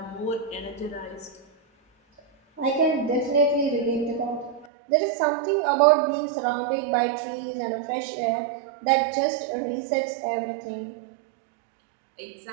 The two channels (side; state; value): left; drops out; at 4.7 s